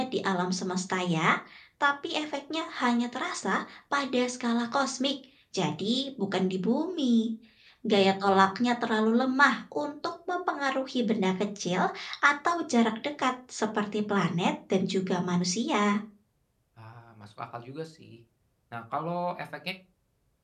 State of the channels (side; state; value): both; identical; correlation 1.00